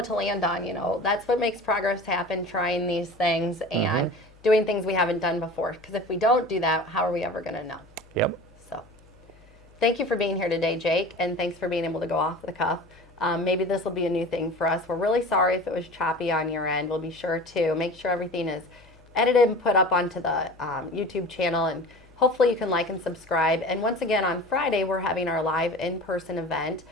to land on. That's what makes progress happen. Trying these things and doing things we haven't done before. Because if we don't do that, how are we ever going to know? Yep. So, thank you for being here today, Jake, and thanks for being able to go off the cuff. Maybe this will be a new thing for us. We're really sorry if it was choppy on your end. We'll be sure to make sure everything is edited and put up onto the YouTube channel, and hopefully you can like and subscribe. And once again, on Friday, we're having our live in-person event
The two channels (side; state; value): left; noise; hum, 26 dB below the sound